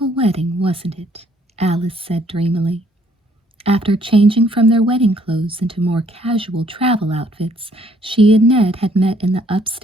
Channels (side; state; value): both; normal; correlation 0.65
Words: wedding, wasn't it?" Alice said dreamily. After changing from their wedding clothes into more casual travel outfits, she and Ned had met in the